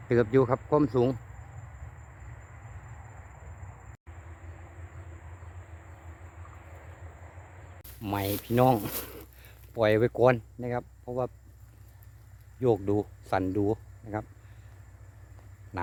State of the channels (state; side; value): identical; both; correlation 1.00